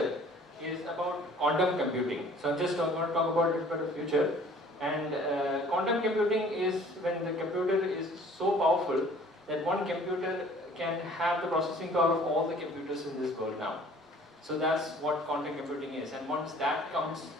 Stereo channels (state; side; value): normal; both; correlation 0.52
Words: is about quantum computing. So I'm just going to talk about it for the future. And quantum computing is when the computer is so powerful that one computer can have the processing power of all the computers in this world now. So that's what quantum computing is. And once that comes